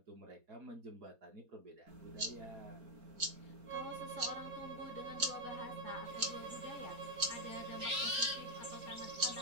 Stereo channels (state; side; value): late; left; 4.2 ms